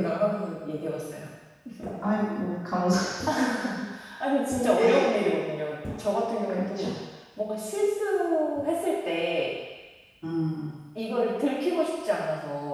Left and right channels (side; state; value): both; identical; correlation 1.00